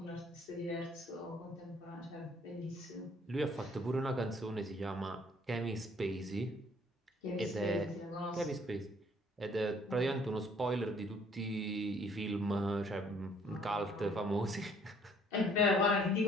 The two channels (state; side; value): normal; both; correlation 0.60